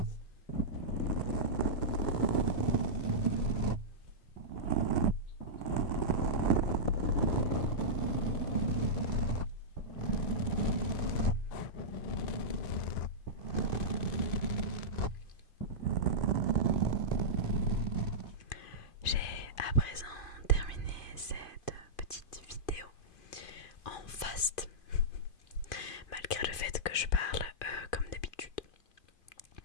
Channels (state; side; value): late; right; 2.5 ms